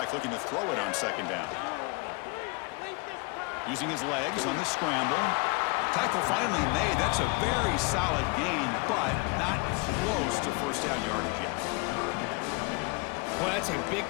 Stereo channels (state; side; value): quieter; right; 29.1 dB